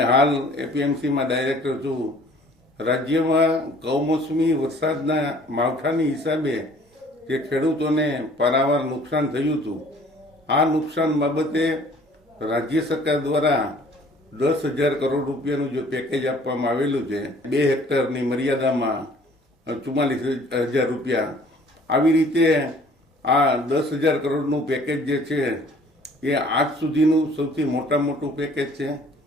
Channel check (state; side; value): normal; both; correlation 0.54